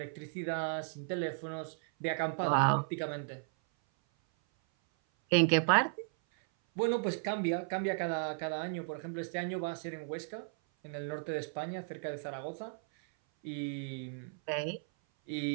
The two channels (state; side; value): silent; left; 54 dB below the other